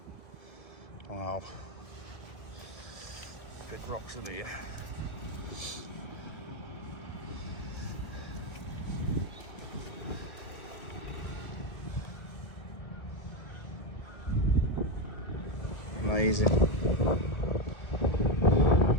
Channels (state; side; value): late; right; 1.7 ms